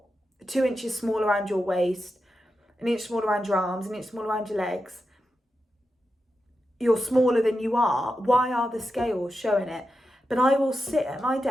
2 inches small around your waist, an inch smaller around your arms, an inch smaller around your legs. You're smaller than you are. Why are the scales showing it? But I will sit at my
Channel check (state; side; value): normal; both; correlation 0.89